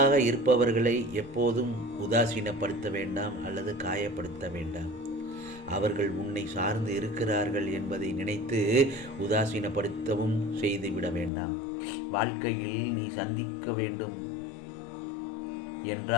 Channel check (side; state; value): right; drops out; at 11.3 s